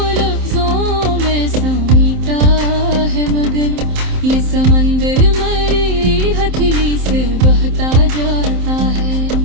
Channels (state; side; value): late; left; 27 ms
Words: लफ्जों में समेटा है, मगर ये समंदर मेरी हथेली से बहता जाता है।